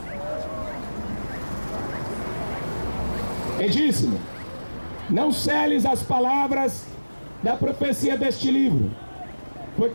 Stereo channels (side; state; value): both; inverted; correlation -1.00